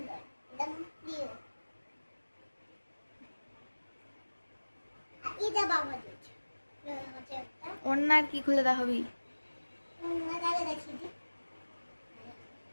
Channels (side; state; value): both; inverted; correlation -1.00